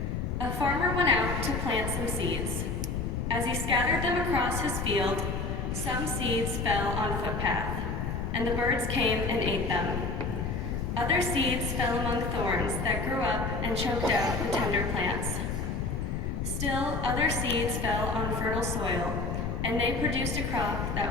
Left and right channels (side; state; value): left; noise; rumble, 2 dB below the sound